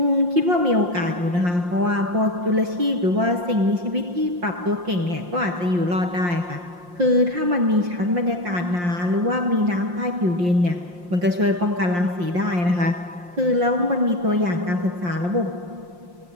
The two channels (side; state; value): left; late; 5.7 ms